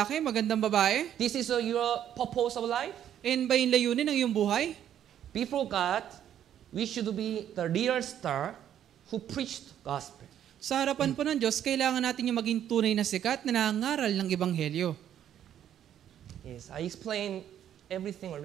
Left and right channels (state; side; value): quieter; left; 10.3 dB